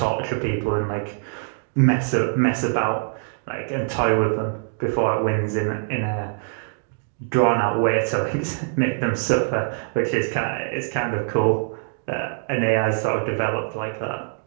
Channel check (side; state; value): left; silent; 63 dB below the other